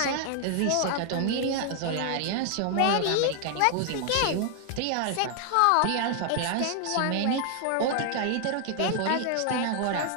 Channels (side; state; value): both; different; correlation 0.00